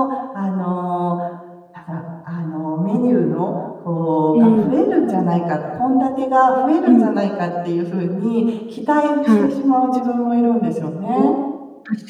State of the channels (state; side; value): identical; both; correlation 1.00